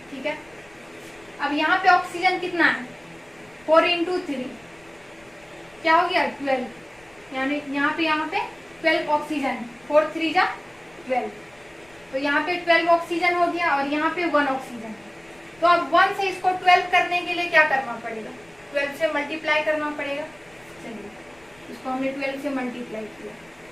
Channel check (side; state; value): left; noise; rumble, 29 dB below the sound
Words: ठीक है। अब यहाँ पे ऑक्सीजन कितना है, 4 × 3 क्या हो गया, 12, यानी यहाँ पे 12 ऑक्सीजन, 4 × 3 = 12। तो यहाँ पे 12 ऑक्सीजन हो गया और यहाँ पे 1 ऑक्सीजन। तो अब 1 से इसको 12 करने के लिए क्या करना पड़ेगा, 12 से मल्टीप्लाई करना पड़ेगा। चलिए इसको हमने 12 से मल्टीप्लाई किया,